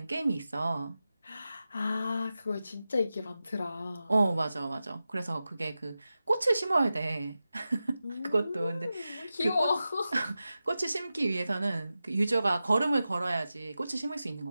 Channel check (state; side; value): inverted; both; correlation -0.93